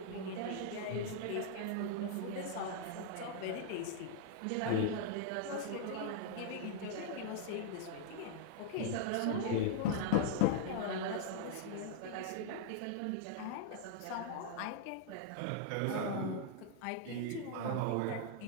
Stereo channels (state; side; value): different; both; correlation -0.01